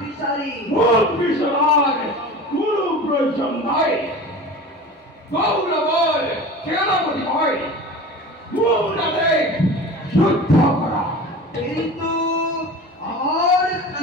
মুখ বিচার কোনো প্রয়োজন নাই গৌরবর সেনাপতি হয় মুখ যুদ্ধ করা কিন্তু আমার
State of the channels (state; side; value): normal; both; correlation 0.35